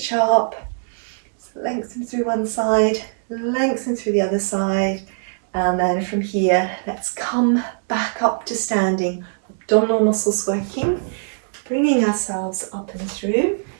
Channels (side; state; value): left; silent; digital silence